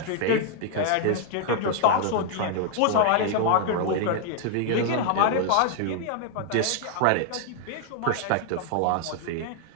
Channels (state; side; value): different; both; correlation 0.00